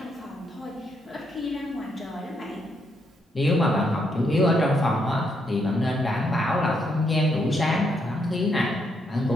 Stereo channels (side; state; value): both; normal; correlation 0.77